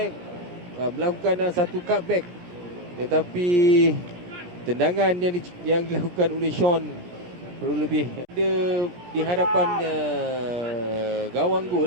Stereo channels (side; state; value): left; late; 17 ms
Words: melakukan satu cutback. Tetapi tendangan yang dilakukan oleh Sean perlu lebih ada di hadapan gawang